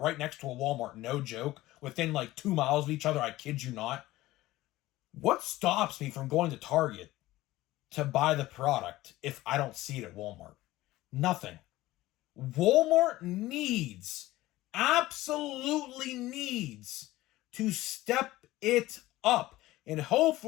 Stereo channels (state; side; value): quieter; right; 17.2 dB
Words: next to a Walmart, no joke, within like 2 miles of each other, I kid you not. What stops me from going to Target to buy the product if I don't see it at Walmart? Nothing. Walmart absolutely needs to step it up. And